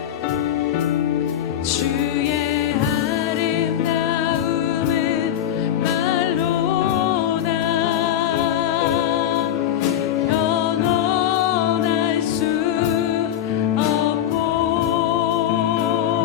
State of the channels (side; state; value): right; quieter; 10.8 dB